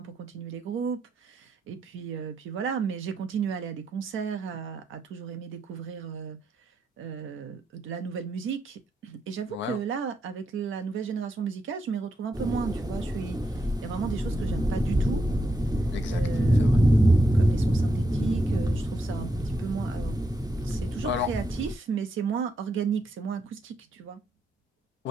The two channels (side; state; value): both; normal; correlation 0.82